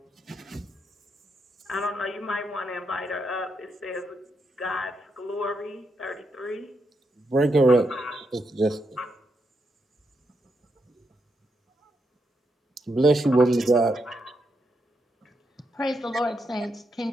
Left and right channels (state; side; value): normal; both; correlation 0.82